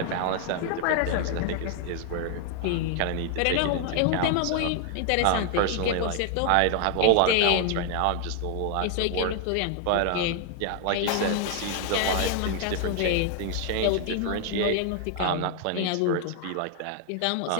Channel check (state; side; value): different; both; correlation 0.00